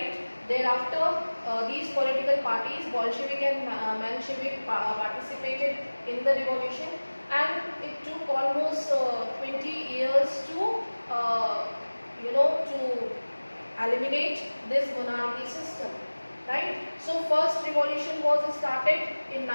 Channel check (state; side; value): inverted; both; correlation -1.00